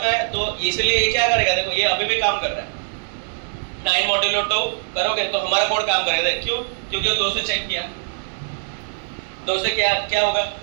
आया, तो इसलिए ये क्या करेगा, देखो ये अभी भी काम कर रहा है। 9 मॉड्यूलो 2 करोगे तो हमारा कोड काम करेगा। क्यों, क्योंकि 2 से चेक किया, 2 से क्या होगा,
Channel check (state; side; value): silent; left; digital silence